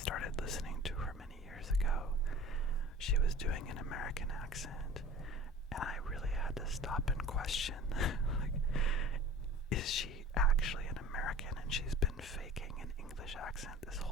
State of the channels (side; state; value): both; normal; correlation 0.41